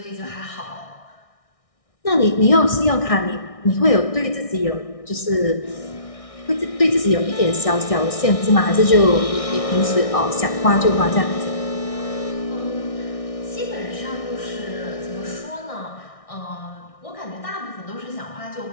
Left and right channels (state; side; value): late; right; 1.6 ms